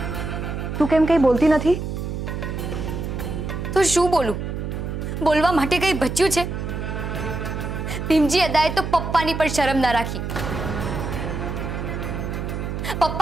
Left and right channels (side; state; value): right; noise; hum, 4 dB below the sound